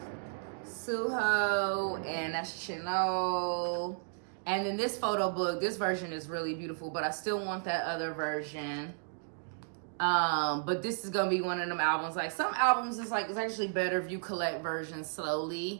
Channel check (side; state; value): left; silent; digital silence